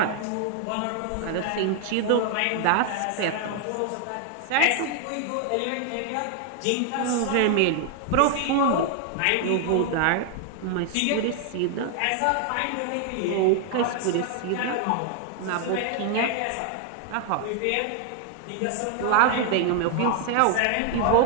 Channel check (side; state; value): both; different; correlation 0.00